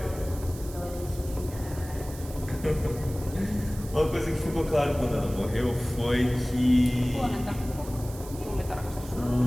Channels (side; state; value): right; noise; hiss, 17 dB below the sound